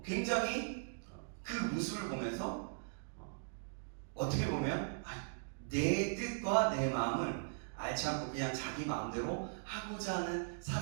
굉장히 그 모습을 보면서 어떻게 보면 내 뜻과 내 마음을 알지 않고 그냥 자기 마음대로 하고자 하는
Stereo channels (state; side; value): silent; left; digital silence